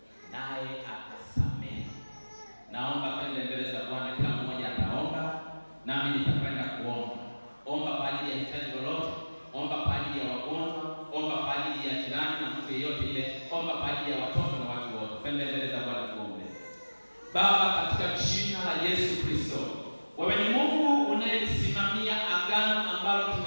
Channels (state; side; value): inverted; both; correlation -1.00